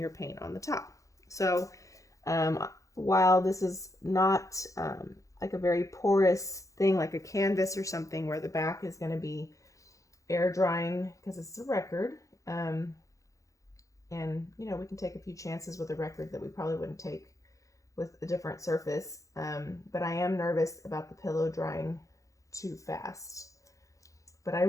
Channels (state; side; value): late; right; 0.16 ms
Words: paint on the top. So while this is not like a very porous thing like a canvas or something where the back is going to be air drying because it's a record, and you know, we can take a few chances with a record that we probably wouldn't take with a different surface, but I am nervous about the pillow drying too fast. But I